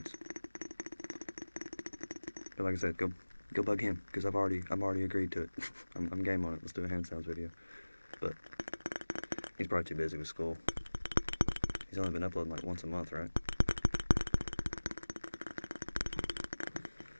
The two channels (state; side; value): inverted; both; correlation -1.00